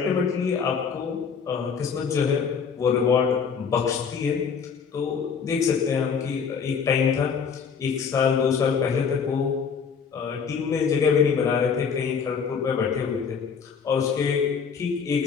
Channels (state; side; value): quieter; right; 6.3 dB